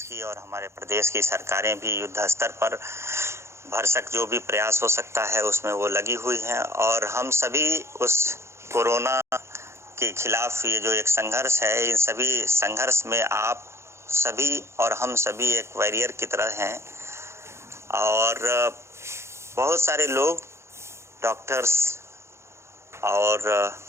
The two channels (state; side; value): late; left; 0.13 ms